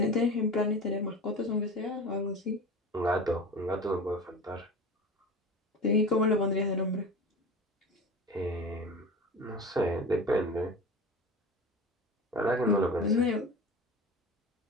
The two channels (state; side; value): normal; both; correlation 0.32